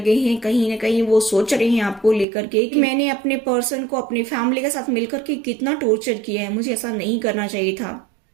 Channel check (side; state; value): left; drops out; at 2.2 s